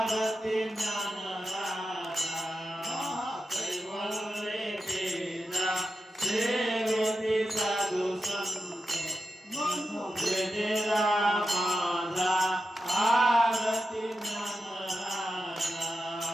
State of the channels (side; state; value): both; normal; correlation 0.89